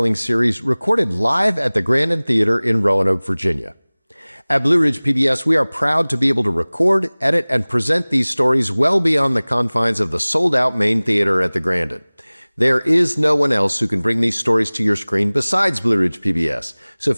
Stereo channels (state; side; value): inverted; both; correlation -1.00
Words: series recorded live at the Grandin Theater in Roanoke, Virginia. At Blue Ridge PBS, we are proud to be able to record, edit, and present these stories well beyond the confines of the sold-out main theater at the Grandin. There is no one else who can bring these stories to your screen besides Blue Ridge PBS. So